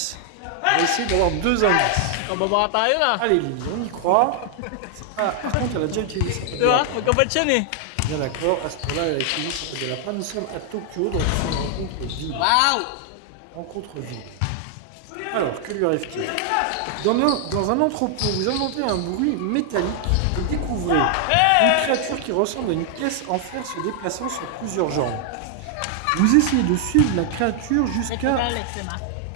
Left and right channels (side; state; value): both; different; correlation 0.00